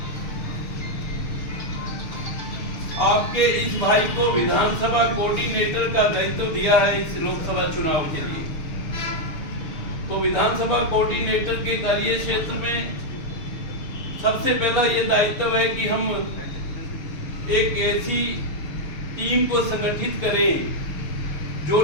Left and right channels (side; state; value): right; late; 6.6 ms